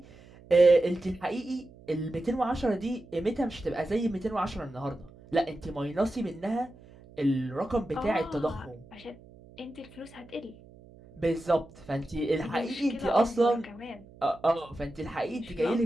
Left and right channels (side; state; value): right; noise; hum, 22 dB below the sound